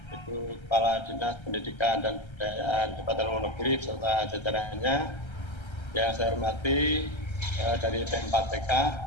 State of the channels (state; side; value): late; right; 1.3 ms